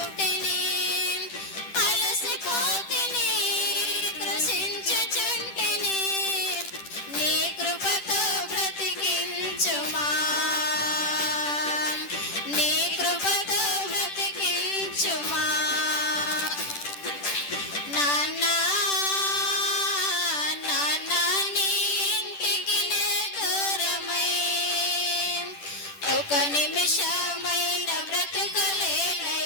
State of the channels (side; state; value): right; late; 10 ms